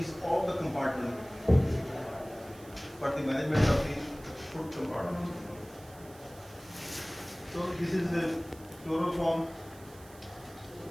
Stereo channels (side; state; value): right; noise; hiss, 22 dB below the sound